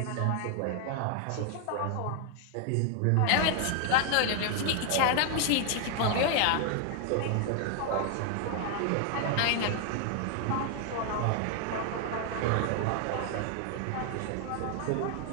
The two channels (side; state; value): both; different; correlation 0.00